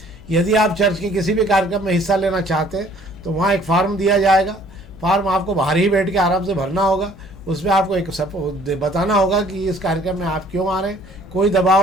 यदि आप चर्च के किसी भी कार्यक्रम में हिस्सा लेना चाहते हैं तो वहाँ एक फार्म दिया जाएगा। फार्म आपको बाहर ही बैठ के आराम से भरना होगा। उसमें आपको एक बताना होगा कि इस कार्यक्रम में आप क्यों आ रहे हैं। कोई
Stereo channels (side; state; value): left; noise; hum, 20 dB below the sound